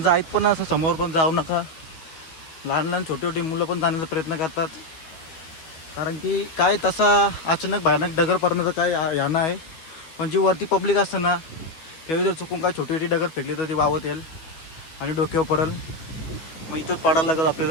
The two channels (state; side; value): late; right; 12 ms